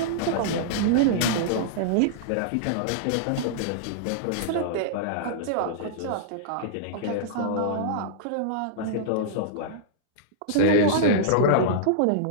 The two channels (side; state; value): both; different; correlation -0.02